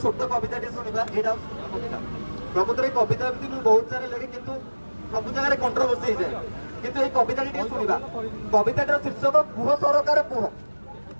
छोट कविता टे शुणा यहाँ प्रकृत कविता एमती मुझे बहुत सारा लगे किंतु सब जगह कंट्रोवर्सी हो जाए किंतु ये कविता टे शुणा कविताटर शीर्षक कुह सरकार कुह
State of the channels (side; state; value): both; inverted; correlation -1.00